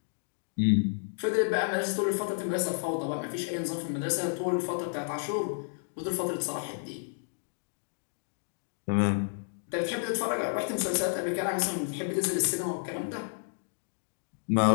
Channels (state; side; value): silent; right; digital silence